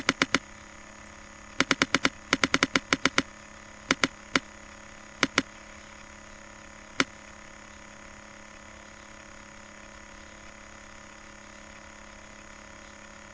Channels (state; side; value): identical; both; correlation 1.00